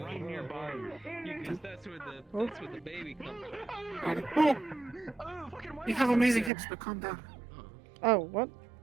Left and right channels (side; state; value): left; drops out; at 6.5 s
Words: right nearby you. Because that's where the baby comes from. You have amazing hips, but calm down. Oh, what?